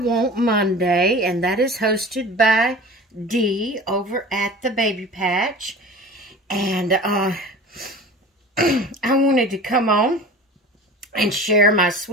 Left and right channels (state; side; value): normal; both; correlation 0.39